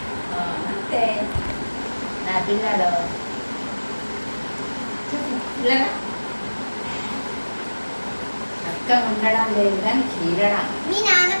అంతే నా పిల్లలు. పిల్లలు చక్కగా ఉండడం లేదు కానీ చీరడం. మీ నాన్న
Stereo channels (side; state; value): both; inverted; correlation -1.00